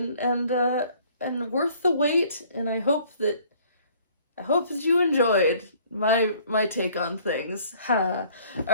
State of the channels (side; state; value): both; inverted; correlation -0.56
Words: worth the wait, and I hope that you enjoyed my take on things. Ha.